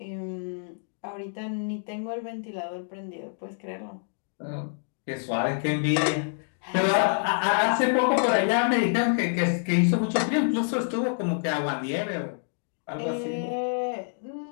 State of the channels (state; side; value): silent; right; digital silence